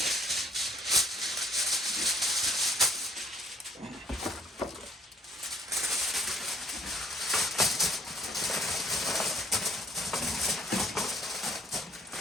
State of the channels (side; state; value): both; normal; correlation 0.64